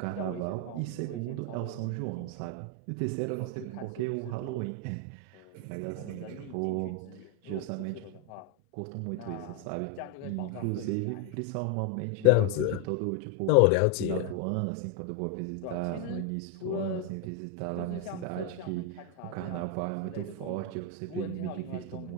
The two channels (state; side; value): different; both; correlation 0.01